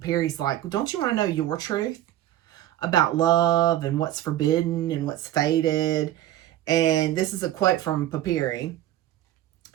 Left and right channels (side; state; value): left; quieter; 13.1 dB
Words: like, don't you want to know your truth about love and what's forbidden and what's fated? And this is a quote from Papyri.